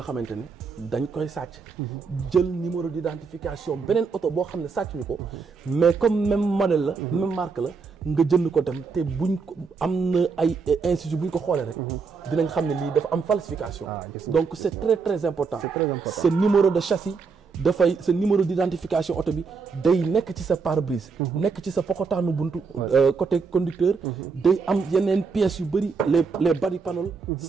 ne dañ koy sàcc jël numéro d'identification beneen oto boo xam ne sàcc ñu ko mais comme même modèle la même marque la nga jënd ko dem te buñ ko am na ay institut buñ ko xoolee rek dinañ xam ne lii dafa am falsification donc c'est très très important ce numéro de châssis dafay sa numéro d'identification oto bi day nekk ci sa pare-brise nekk ci sa pokotaanu buntu côté conducteur day am yeneen pièces yu bëri les body panel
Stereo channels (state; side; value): quieter; left; 5.1 dB